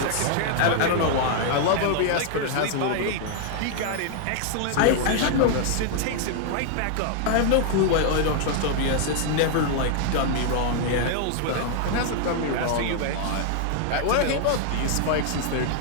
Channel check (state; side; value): different; both; correlation 0.00